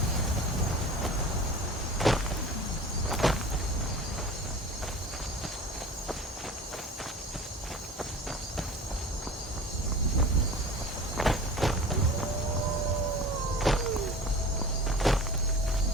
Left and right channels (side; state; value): both; normal; correlation 0.38